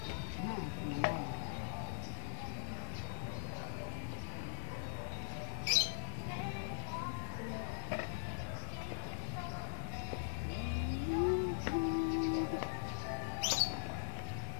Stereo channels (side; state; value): right; silent; digital silence